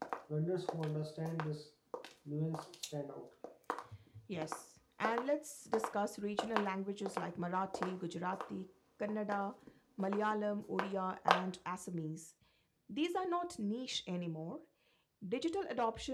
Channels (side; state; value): both; identical; correlation 1.00